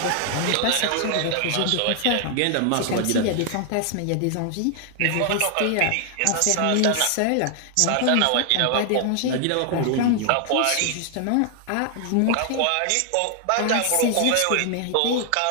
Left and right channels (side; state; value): both; different; correlation 0.00